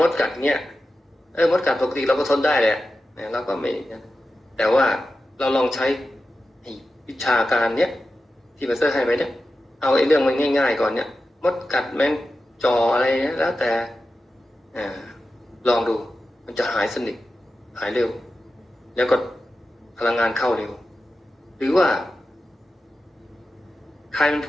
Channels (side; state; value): both; normal; correlation 0.92